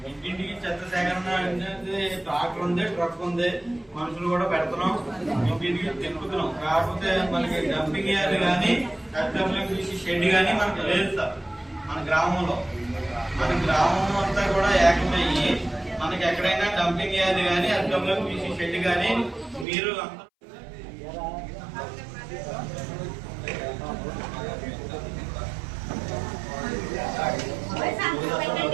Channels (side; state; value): left; drops out; at 19.7 s